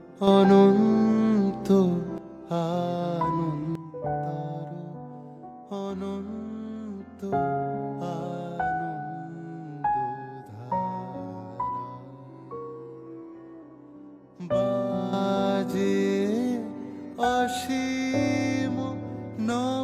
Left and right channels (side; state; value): both; identical; correlation 1.00